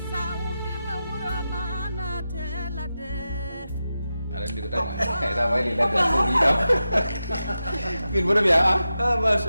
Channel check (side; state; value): both; inverted; correlation -0.91